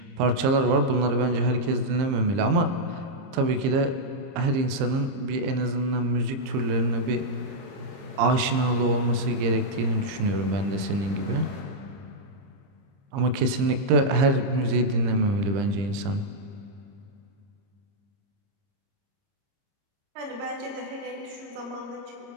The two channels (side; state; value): left; late; 30 ms